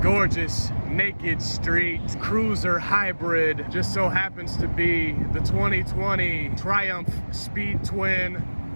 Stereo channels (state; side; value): inverted; both; correlation -1.00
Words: gorgeous naked street cruiser hybrid just so happens to be the 2020 Triumph Speed Twin